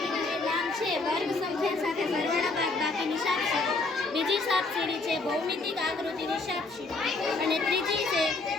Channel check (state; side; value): quieter; right; 3.5 dB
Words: જે વર્ગ સંખ્યા સાથે સરવાળા બાદબાકીની સાપસીડી. બીજી સાપસીડી છે ભૌમિતિક આકૃતિની સાપસીડી અને ત્રીજી